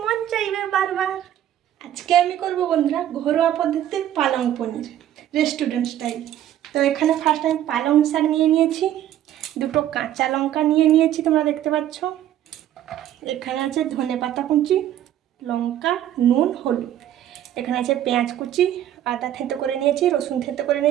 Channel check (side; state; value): left; quieter; 11.8 dB